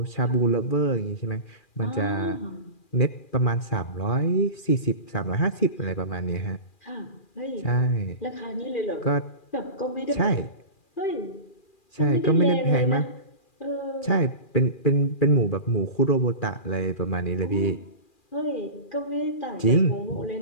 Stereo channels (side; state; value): right; late; 2.4 ms